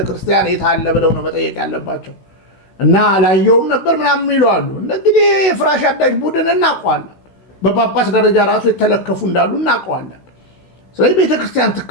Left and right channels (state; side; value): late; right; 16 ms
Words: የት አለ ብለው ነው መጠየቅ ያለባቸው። እና አላየውም ነበር ምናምን ይለዋሉ። እንግዲህ የፍራሽ አዳሽ ቡድን እናውቀዋለን። በጳጳስ ደረጃ ራሱ የተለከፉ እንዳሉ እናውቀዋለን። ስለዚህ ቤተክርስቲያን